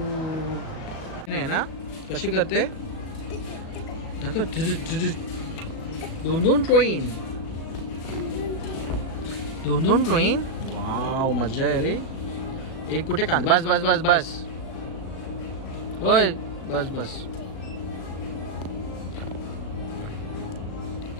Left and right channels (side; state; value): right; late; 37 ms